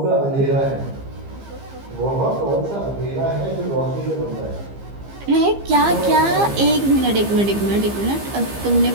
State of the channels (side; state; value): left; late; 15 ms